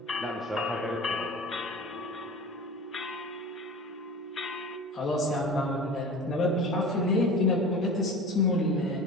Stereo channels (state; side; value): normal; both; correlation 0.36